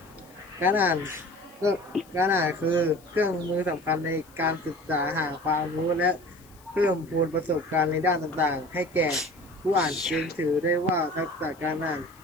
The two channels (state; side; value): noise; left; hiss, 27 dB below the sound